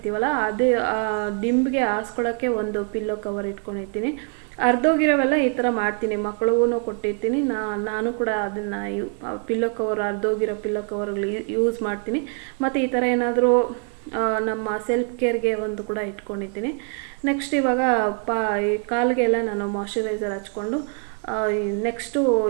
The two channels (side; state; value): left; quieter; 39.6 dB